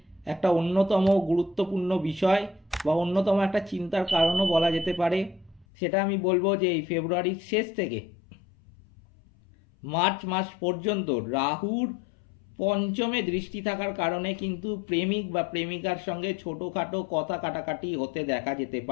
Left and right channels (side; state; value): right; drops out; at 5.7 s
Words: একটা অন্যতম গুরুত্বপূর্ণ বিষয় বা অন্যতম একটা চিন্তার কারণও বলা যেতে পারে, সেটা আমি বলবো যে এই ফেব্রুয়ারির শেষ থেকে মার্চ মাস পর্যন্ত রাহুর পঞ্চমে দৃষ্টি থাকার কারণে কিন্তু প্রেমিক বা প্রেমিকার সঙ্গে ছোটোখাটো কথা কাটাকাটি হতে দেখা যেতে